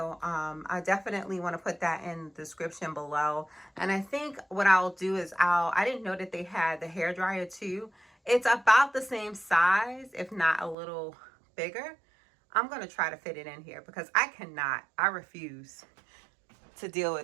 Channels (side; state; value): left; drops out; at 10.8 s